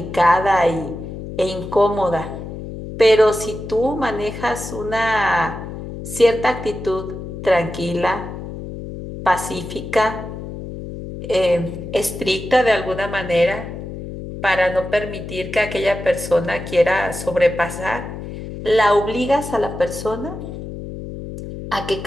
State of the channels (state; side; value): noise; left; hum, 9 dB below the sound